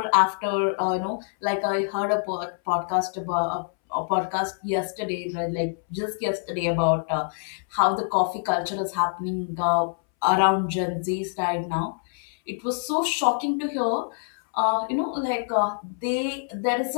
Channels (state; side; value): silent; right; 61 dB below the other